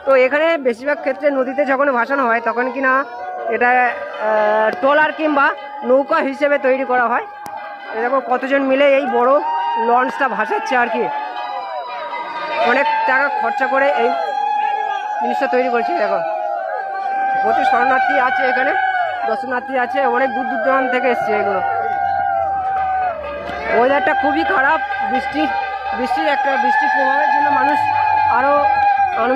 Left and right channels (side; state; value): both; identical; correlation 1.00